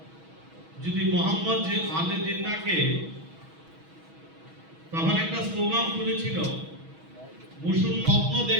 যদি মোহাম্মদ আলী জিন্নাহকে তখন একটা স্লোগান তুলেছিল, মুসলিম স্বপ্ন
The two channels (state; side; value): late; left; 6.2 ms